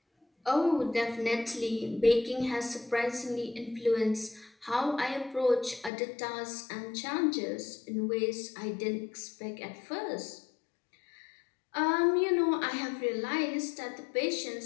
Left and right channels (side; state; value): right; drops out; at 5.9 s